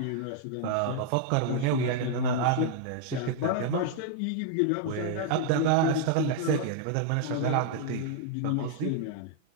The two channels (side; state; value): both; different; correlation -0.01